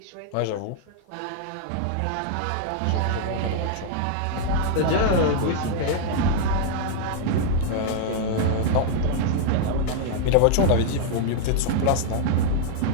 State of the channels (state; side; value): different; both; correlation -0.01